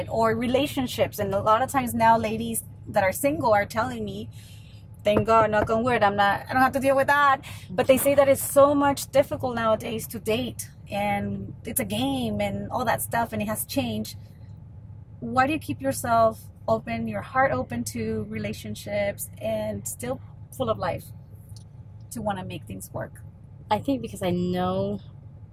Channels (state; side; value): identical; both; correlation 1.00